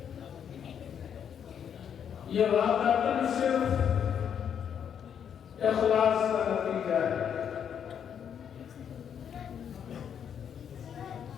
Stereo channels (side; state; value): right; quieter; 8.3 dB